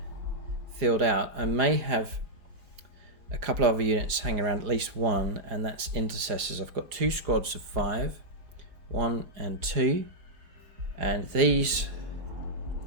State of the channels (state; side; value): late; left; 4.9 ms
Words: filled out. I may have a couple of other units hanging around, at least one, and that's Intercessors. I've got 2 squads of 5, 1 and 2, and these